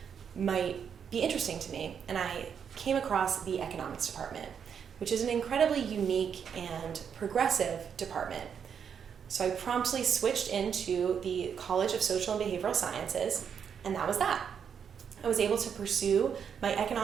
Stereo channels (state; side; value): quieter; left; 7.4 dB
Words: might be interesting to me, and I came across the economics department, which is an incredibly unique and progressive department. So I promptly switched into the College of Social and Behavioral Sciences, and that was that. I was able to pursue my